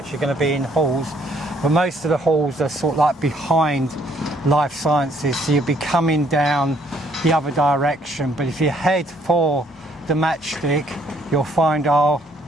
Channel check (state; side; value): normal; both; correlation 0.66